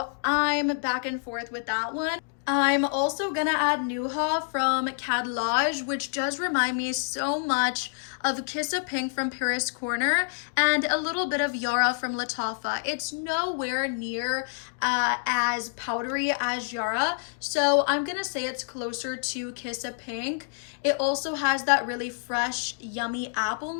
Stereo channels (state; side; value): silent; right; digital silence